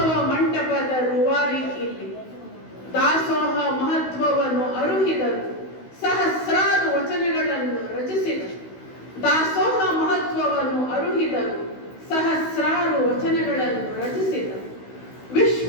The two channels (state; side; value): late; right; 16 ms